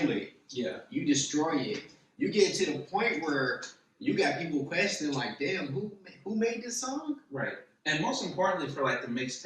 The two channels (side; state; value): both; identical; correlation 1.00